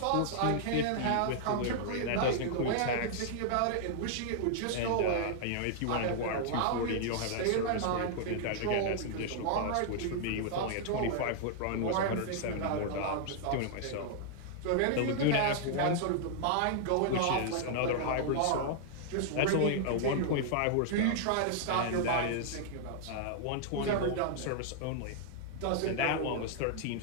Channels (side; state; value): both; different; correlation -0.01